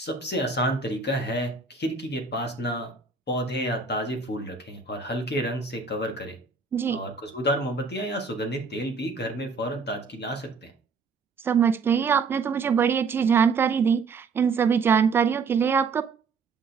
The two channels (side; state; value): left; quieter; 4.6 dB